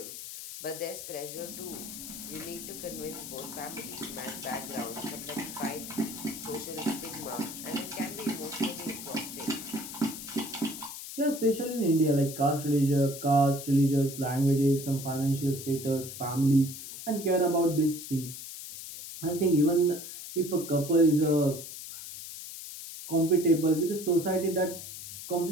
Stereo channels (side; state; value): left; noise; hiss, 10 dB below the sound